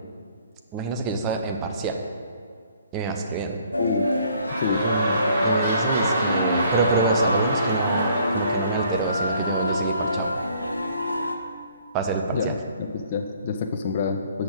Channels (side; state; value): both; inverted; correlation -0.60